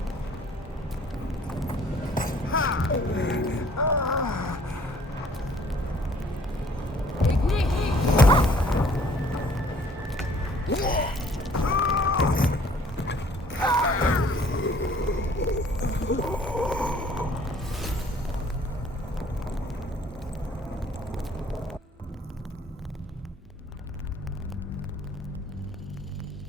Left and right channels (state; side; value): normal; both; correlation 0.57